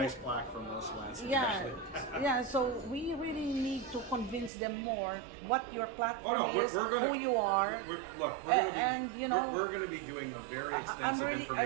nice plaque from Los Lansing. Yeah, actually. yeah. So we really need to convince them more what your platform Oh no, is, we're gonna, who you are. Look, we're gonna be, and, you know, we're gonna be doing a very extensive I'm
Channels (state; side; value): drops out; left; at 4.5 s